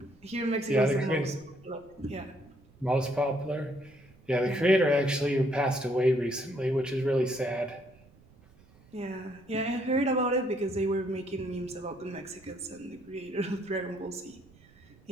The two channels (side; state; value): right; noise; rumble, 27 dB below the sound